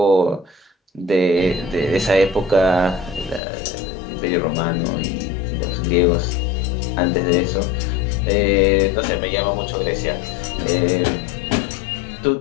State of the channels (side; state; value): right; drops out; at 3.4 s